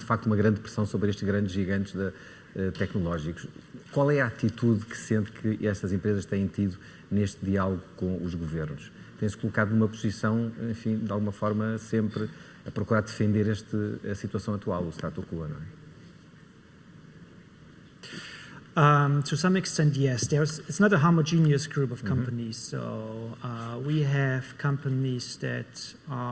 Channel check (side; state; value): both; identical; correlation 1.00